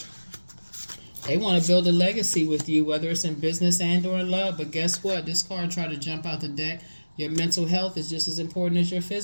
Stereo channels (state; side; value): inverted; both; correlation -1.00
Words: They want to build a legacy with you, whether it's in business and or in love. But guess what? This card tried to jump out the deck. Your mental health is just as important as your